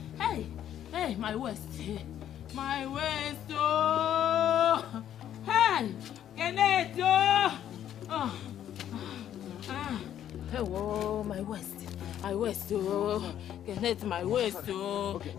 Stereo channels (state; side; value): quieter; right; 10.6 dB